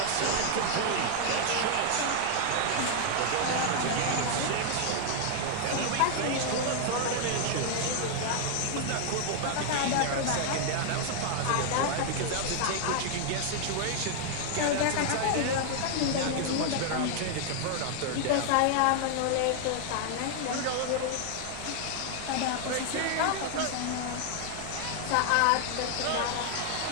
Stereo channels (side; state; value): both; different; correlation 0.00